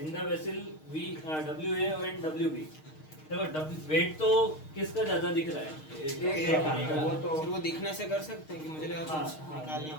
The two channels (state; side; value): late; right; 6.5 ms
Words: the vessel WA and WB. देखो wait तो किसका ज्यादा दिख रहा है? वो दिखने से कर सकते हैं कि मुझे लगा कुछ निकालना